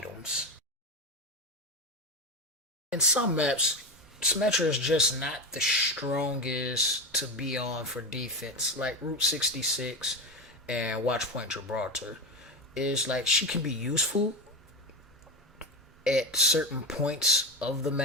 In some maps, Symmetra is just not the strongest to be on for defense, like Route 66 and Watchpoint Gibraltar. Is like, she can be useful at certain points of the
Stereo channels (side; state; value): both; normal; correlation 0.18